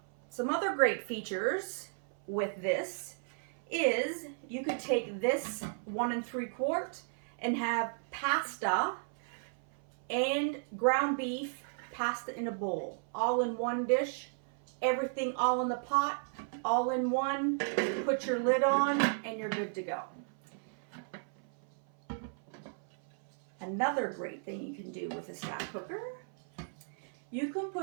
some other great features with this is you could take this 1 3/4 and have pasta and ground beef pasta in a bowl. All in one dish, everything all in the pot, all in one. Put your lid on and you're good to go. Another great thing you can do with a stack cooker, you can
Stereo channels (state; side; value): silent; left; 55 dB below the other